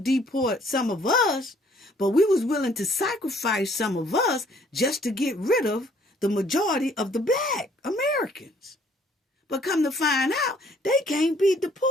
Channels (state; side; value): normal; both; correlation 0.62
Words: to deport some of us, but we was willing to sacrifice some of us just to get rid of the majority of the black Americans. But come to find out, they can't be